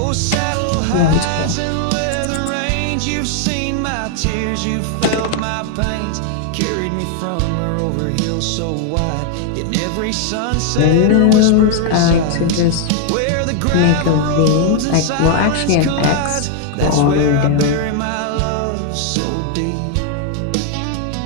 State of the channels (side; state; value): both; different; correlation 0.00